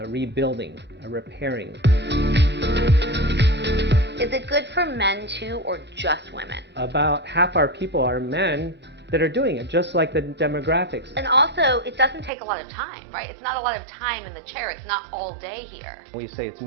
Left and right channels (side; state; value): left; drops out; at 12.3 s